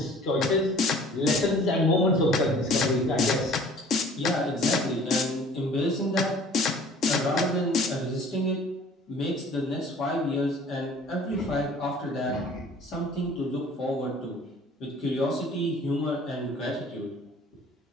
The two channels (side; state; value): both; normal; correlation 0.50